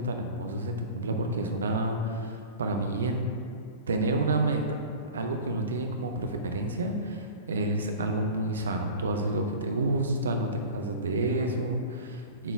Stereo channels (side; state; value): both; inverted; correlation -0.37